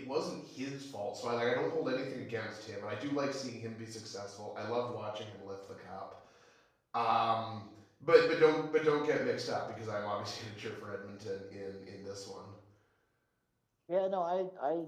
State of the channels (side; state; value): both; identical; correlation 1.00